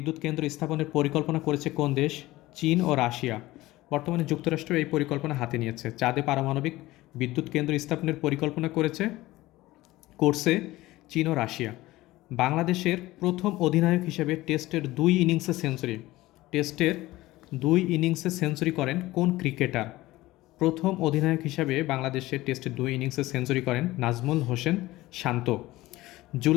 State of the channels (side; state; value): right; quieter; 18.0 dB